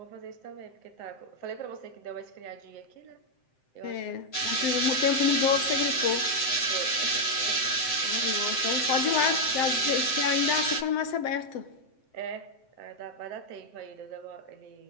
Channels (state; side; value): late; right; 7.7 ms